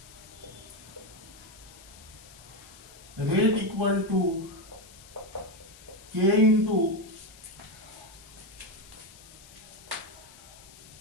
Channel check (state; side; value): noise; left; hiss, 20 dB below the sound